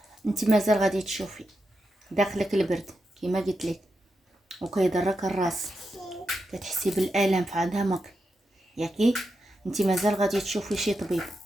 انت مازال غادي تشوفي داخلك البرد كيما قلت لك، وكيضرك الراس، كتحسي بالالم في عظامك ياكي. انت مازال غادي تشوفي شي طبيب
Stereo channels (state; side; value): normal; both; correlation 0.87